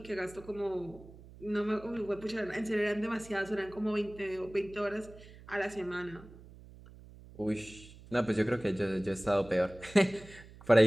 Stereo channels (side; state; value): right; noise; hum, 19 dB below the sound